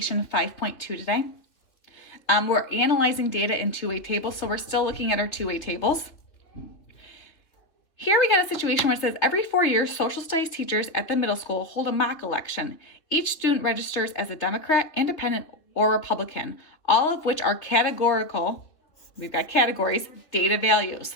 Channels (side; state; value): right; late; 2.9 ms